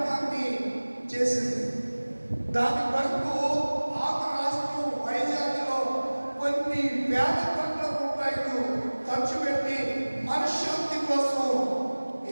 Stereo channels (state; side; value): inverted; both; correlation -1.00